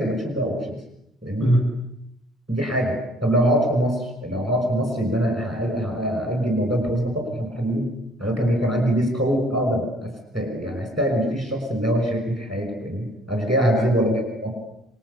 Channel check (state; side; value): normal; both; correlation 0.60